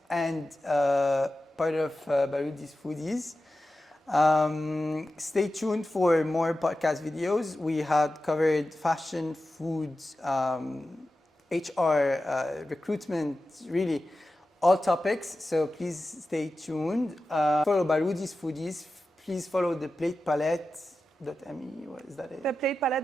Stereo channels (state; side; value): normal; both; correlation 0.93